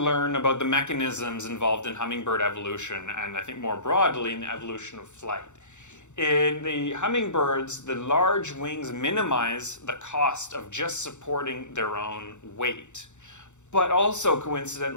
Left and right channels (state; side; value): late; right; 0.84 ms